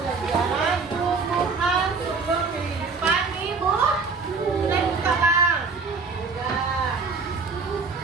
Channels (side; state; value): left; quieter; 4.6 dB